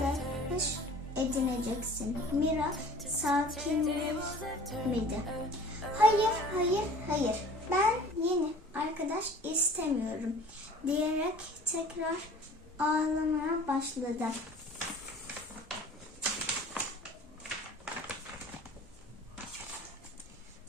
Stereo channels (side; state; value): both; normal; correlation 0.46